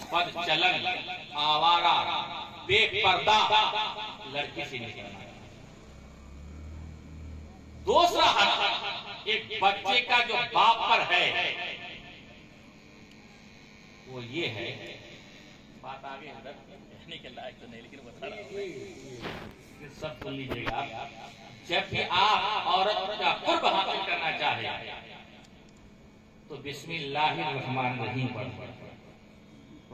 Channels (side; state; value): both; identical; correlation 1.00